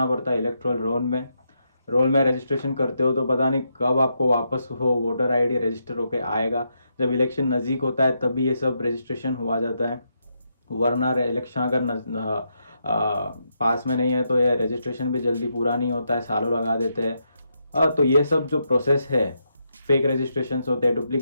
पड़ता है इलेक्ट्रल रोल में रजिस्ट्रेशन करते हो तो पता नहीं कब आपको वापस वो वोटर आईडी रजिस्टर होके आएगा। जब इलेक्शन नज़दीक होता है तभी ये सब रजिस्ट्रेशन हुआ जाता है, वरना इलेक्शन अगर पास में नहीं है तो ये रजिस्ट्रेशन भी जल्दी पूरा नहीं होता है, सालों लगा देते हैं। तो ये सब जो प्रोसेस है, फेक रजिस्ट्रेशंस होते हैं,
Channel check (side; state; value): both; inverted; correlation -0.81